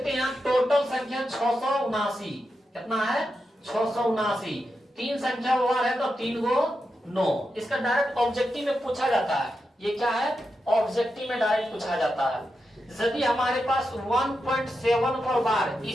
हैं, टोटल संख्या 679। कितना है? 679। 3 संख्या वार है तो 3×9। इसका डायरेक्ट ऑब्जेक्टिव में पूछा जाता है। ये क्या है? ऑब्जेक्टिव में डायरेक्ट पूछा जाता है। यदि हमारे पास 1.7 पर वार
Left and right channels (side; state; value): both; normal; correlation 0.88